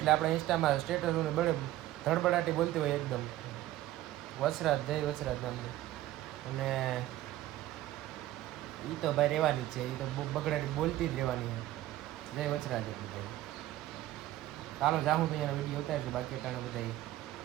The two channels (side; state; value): left; quieter; 14.8 dB